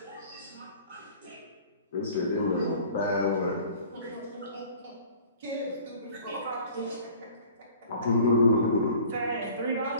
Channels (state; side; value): inverted; both; correlation -0.48